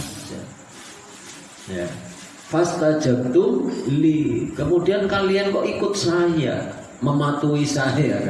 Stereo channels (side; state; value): both; identical; correlation 1.00